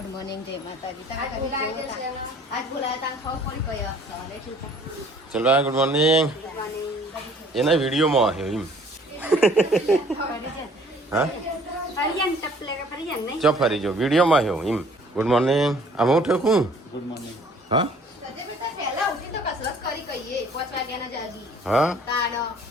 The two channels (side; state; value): both; normal; correlation 0.55